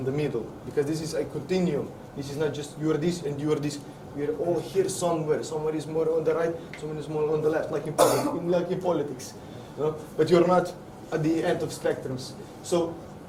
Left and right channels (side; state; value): both; identical; correlation 1.00